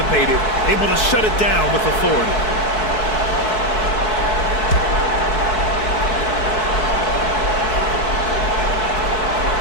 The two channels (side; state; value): right; late; 4.6 ms